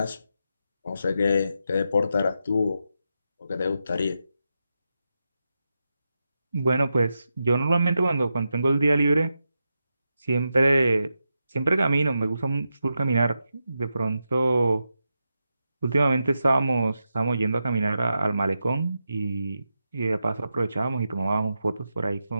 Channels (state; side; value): inverted; both; correlation -0.88